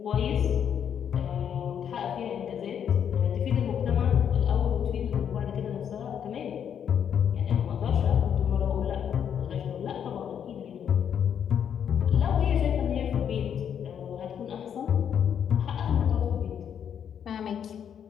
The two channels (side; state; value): right; quieter; 8.5 dB